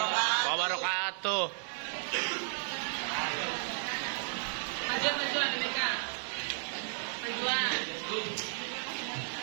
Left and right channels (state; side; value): silent; left; digital silence